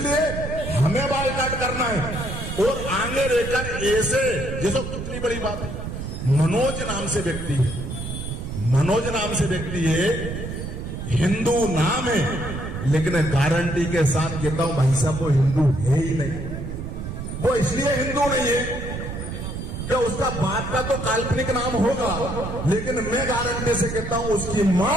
हमें बाइकाट करना है और आगे रहकर ऐसे, जैसे कितनी बड़ी बात है, मनोज नाम से व्यक्ति है, मनोज नाम से व्यक्ति है, हिंदू नाम है, लेकिन गारंटी के साथ कहता हूं भाई साहब वो हिंदू है ही नहीं। वो इसलिए हिंदू नहीं है कि उसका बाप का तो काल्पनिक नाम होगा, लेकिन मैं गारंटी से कहता हूं उसकी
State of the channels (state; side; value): noise; right; rumble, 6 dB below the sound